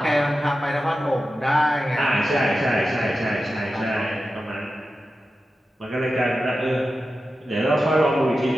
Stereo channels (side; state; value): both; normal; correlation 0.92